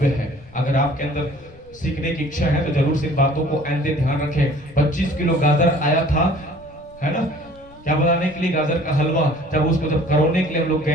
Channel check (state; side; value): noise; left; rumble, 24 dB below the sound